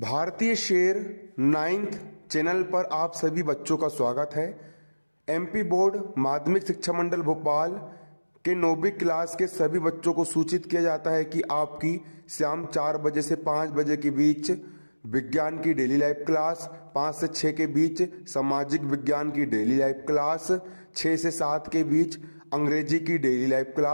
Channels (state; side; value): inverted; both; correlation -1.00